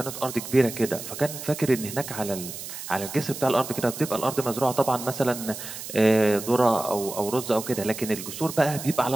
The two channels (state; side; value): noise; right; hiss, 10 dB below the sound